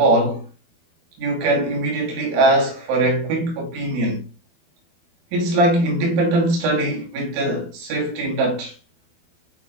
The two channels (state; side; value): late; left; 12 ms